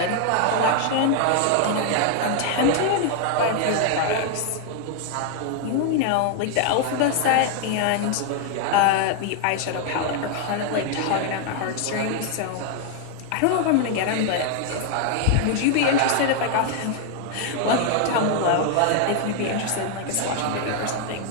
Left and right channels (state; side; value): different; both; correlation 0.00